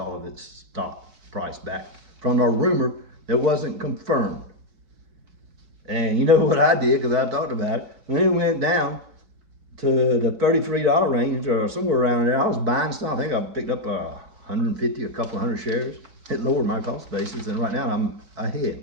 of its stock price back from a rumor that wasn't confirmed. And you know what I did, because I talked about it, when it went down to the $33 range or somewhere around there, I was buying stock. I think I picked up 150, a couple hundred shares. It lowered my cost basis, and right now I'm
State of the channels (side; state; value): left; late; 4.6 ms